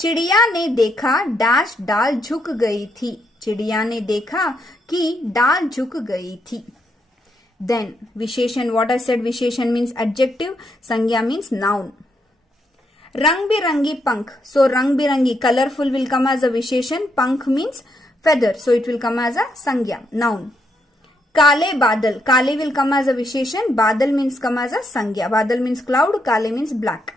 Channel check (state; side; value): normal; both; correlation 0.78